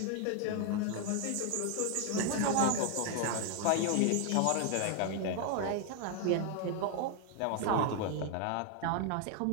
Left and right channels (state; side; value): different; both; correlation 0.00